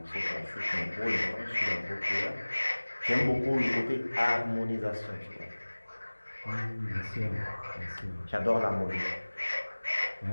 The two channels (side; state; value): both; inverted; correlation -1.00